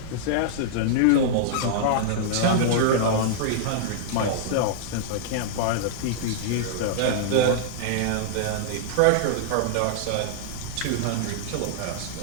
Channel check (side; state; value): both; different; correlation -0.02